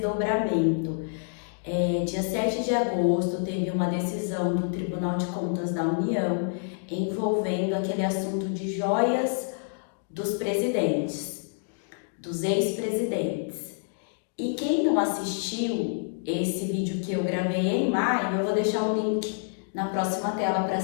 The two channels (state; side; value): silent; right; digital silence